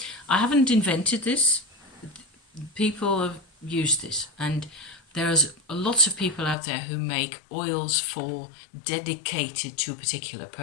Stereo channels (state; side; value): drops out; right; at 6.6 s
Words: I haven't invented this. People have used this, and there's lots of people out there who make oils dedicated to a particular